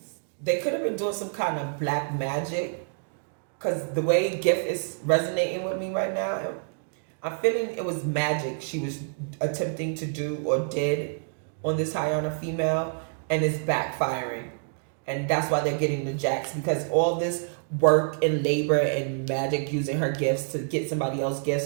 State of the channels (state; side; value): silent; left; digital silence